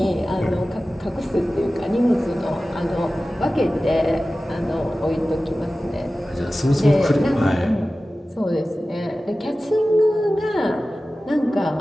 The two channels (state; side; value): normal; both; correlation 0.96